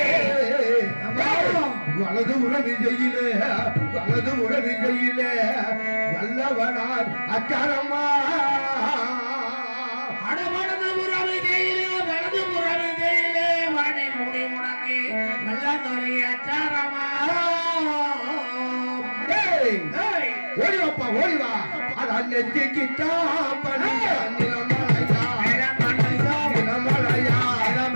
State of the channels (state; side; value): inverted; both; correlation -1.00